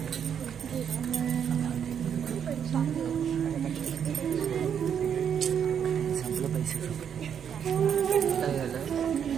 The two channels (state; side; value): quieter; left; 8.1 dB